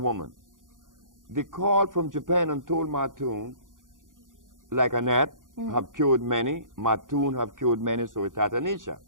They called from Japan and told Matun, like Annette, have cured many, Matun have cured many, so it's Tatanisha.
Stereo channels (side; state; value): left; late; 0.89 ms